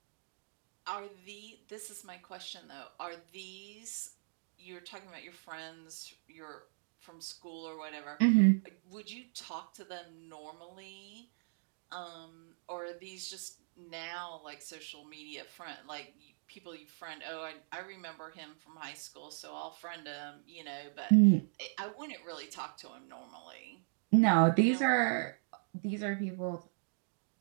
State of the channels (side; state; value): left; silent; digital silence